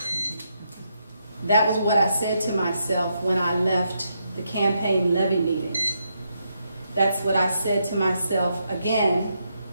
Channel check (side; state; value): both; inverted; correlation -0.80